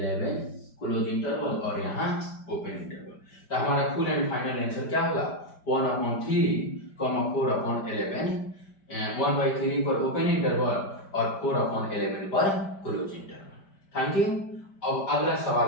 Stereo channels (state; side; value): late; right; 5.1 ms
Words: क्लोज इंटरवल और यहाँ ओपन इंटरवल। तो हमारा फुल एंड फाइनल आंसर क्या होगा 1/3, 4/11 1/3 पर ओपन इंटरवल और 4/11 पर क्लोज इंटरवल। Thank you. अब अगला